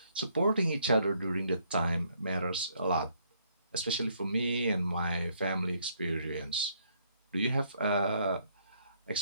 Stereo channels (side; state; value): both; inverted; correlation -0.69